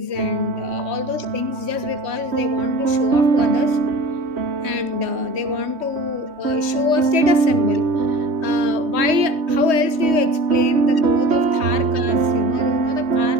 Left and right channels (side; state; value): left; late; 3.2 ms